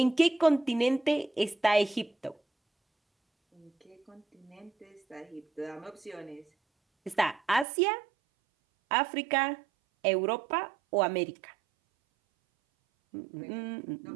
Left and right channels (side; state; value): left; drops out; at 7.7 s